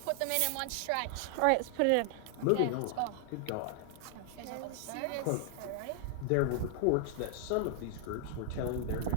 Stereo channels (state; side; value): different; both; correlation 0.00